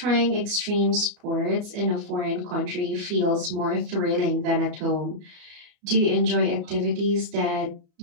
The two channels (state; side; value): late; left; 33 ms